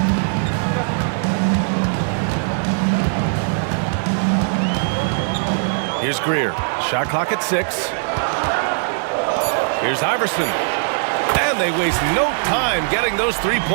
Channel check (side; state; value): left; silent; digital silence